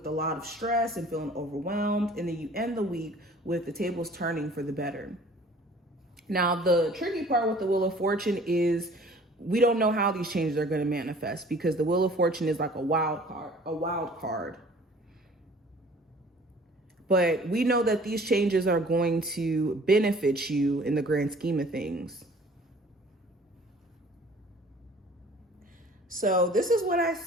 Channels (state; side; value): normal; both; correlation 0.51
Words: a lot of stress and feeling overwhelmed, and then you end the week with the tables turning for the better. Now, the tricky part with the Wheel of Fortune is we don't know how these changes are going to manifest, because the Wheel of Fortune is like a wild card. But we know that these changes are going to benefit you in the grand scheme of things. So this is what I